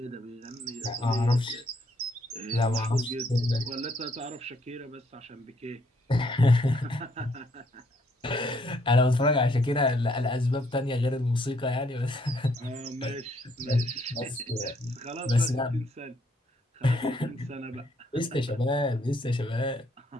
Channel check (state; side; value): normal; both; correlation 0.69